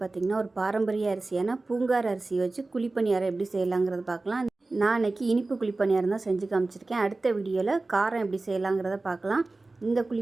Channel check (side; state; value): left; quieter; 3.3 dB